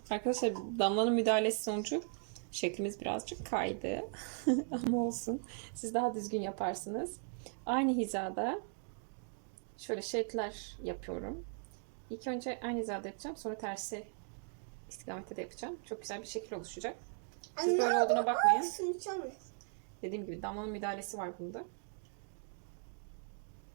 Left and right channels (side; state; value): left; silent; 52 dB below the other